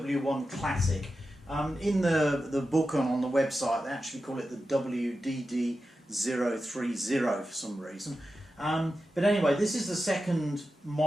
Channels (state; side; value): normal; both; correlation 0.91